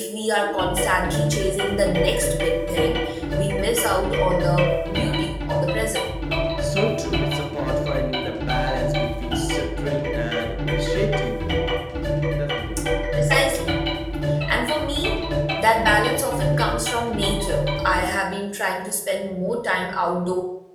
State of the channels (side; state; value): both; identical; correlation 1.00